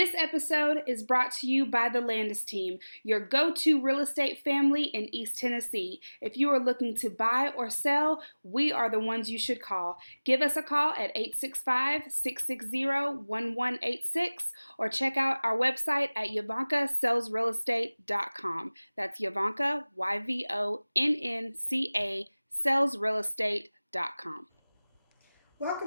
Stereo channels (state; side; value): inverted; both; correlation -1.00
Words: episode is brought to you by the Landes team, your go-to real estate family in East Tennessee. If you are looking to buy or sell, we are the ones you should call. Give us a call at 865-660-1186 or check out our website at YvoncaSellsRealEstate.com. That's Yvonnca, YVONNCA, sellsrealestate.com.